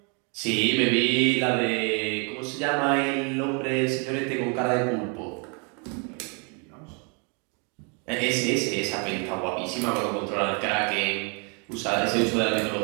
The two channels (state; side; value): quieter; left; 35.7 dB